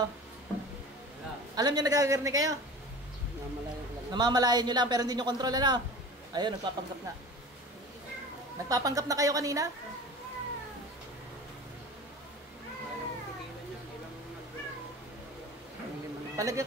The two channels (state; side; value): normal; both; correlation 0.37